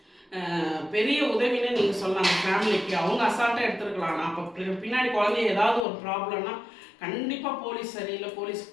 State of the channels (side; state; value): right; drops out; at 5.9 s